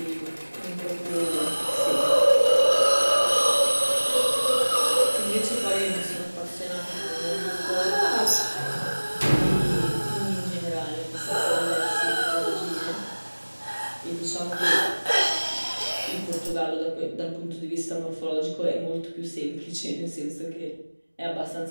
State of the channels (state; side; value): inverted; both; correlation -1.00